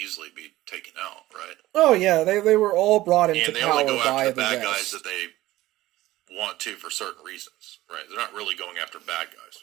be taken out, right? Oh yeah, they were all brought into and they power only go by after the bad West. guys that they want to for certain reasons, right? They're not really going after bad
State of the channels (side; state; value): left; quieter; 16.6 dB